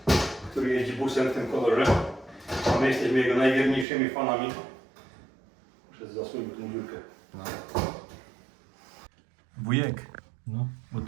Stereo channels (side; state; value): left; drops out; at 3.9 s